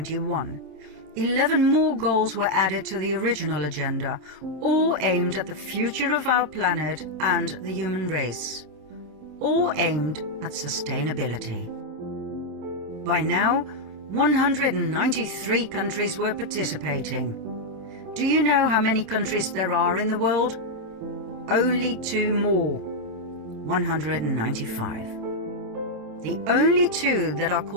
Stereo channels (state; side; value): late; left; 27 ms